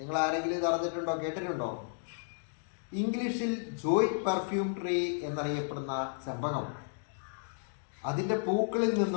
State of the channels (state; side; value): silent; right; digital silence